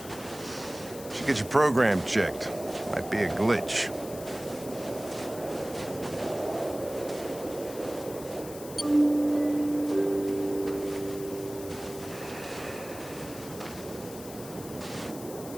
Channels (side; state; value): left; noise; hiss, 15 dB below the sound